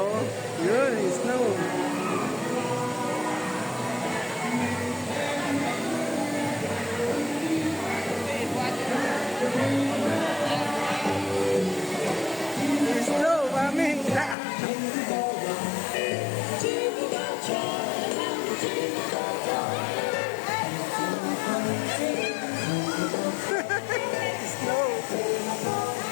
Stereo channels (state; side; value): drops out; right; at 14.4 s